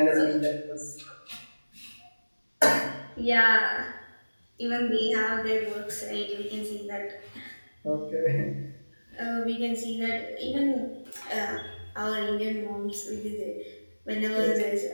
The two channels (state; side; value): inverted; both; correlation -1.00